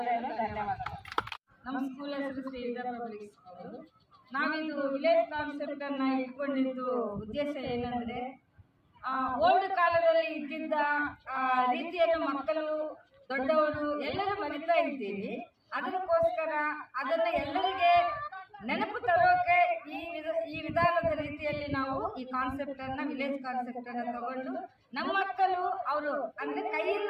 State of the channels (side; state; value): both; identical; correlation 1.00